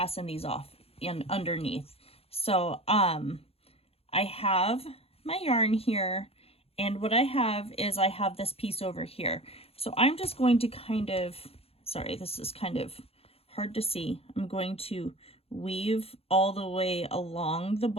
these off in underneath. So I have my yarn here, and what I have is I have this piece over here. So I'm just going to kind of, sorry, this is kind of hard to see. I'm going to weave all the way along the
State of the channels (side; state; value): right; late; 0.29 ms